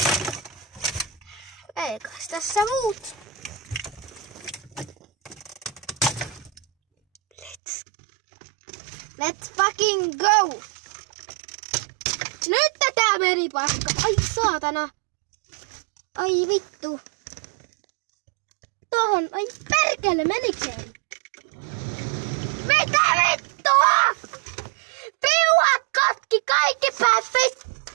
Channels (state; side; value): drops out; left; at 7.6 s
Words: Eikös tässä muut? Let's fucking go! Nyt tää meni paska. Ai saatana. Ai vittu. Tohon. Ai perkele, menikään? Mitä vittua? Piuhat katki kaikki päät vittu.